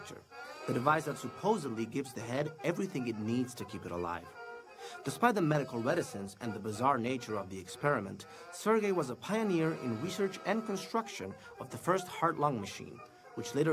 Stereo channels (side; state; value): both; identical; correlation 1.00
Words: the device that supposedly gives the head everything it needs to keep it alive. Despite the medical reticence and the bizarre nature of the experiment, Sergei was a pioneer in research and construction of the first heart-lung machine, which